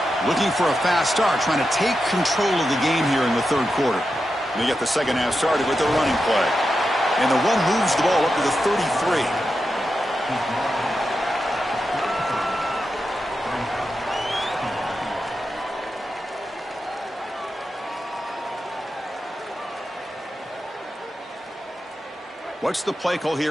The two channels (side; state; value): both; normal; correlation 0.89